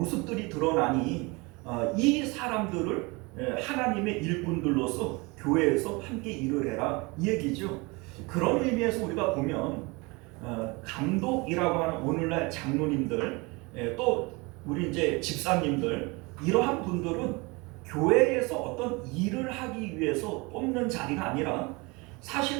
드러나니 이 사람들을 하나님의 일꾼들로서 교회에서 함께 일을 해라, 이 얘기죠. 그런 의미에서 우리가 보면 감독이라고 하는 오늘날 장로님들, 또 우리 이제 집사님들, 이러한 분들은 교회에서 어떤 일을 하기 위해서 뽑는 자리가 아니라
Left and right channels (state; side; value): quieter; left; 26.3 dB